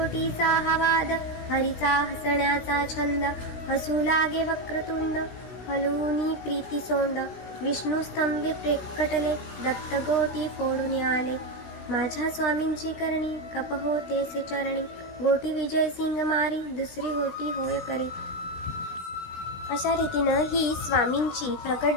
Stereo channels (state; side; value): late; right; 16 ms